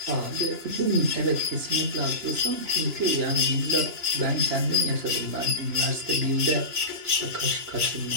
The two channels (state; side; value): late; left; 2.9 ms